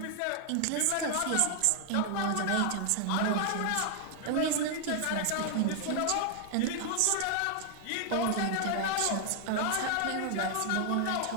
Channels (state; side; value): different; both; correlation 0.00